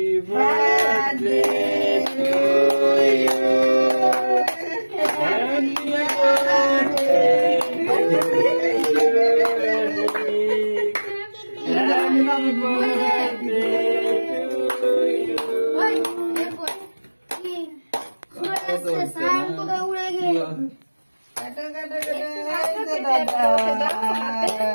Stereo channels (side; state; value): both; inverted; correlation -1.00